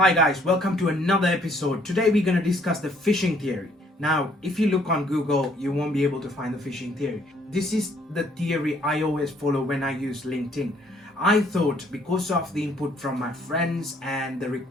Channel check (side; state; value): both; normal; correlation 0.64